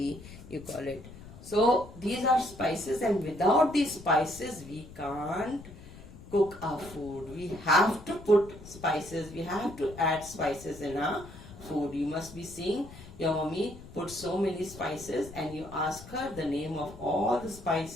you call it. So these are spices, and without these spices we can't cook our food. We have to put spices, we have to add spices in our food. You must be seeing your mommy put so many spices and you ask her the name of all the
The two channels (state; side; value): noise; left; rumble, 16 dB below the sound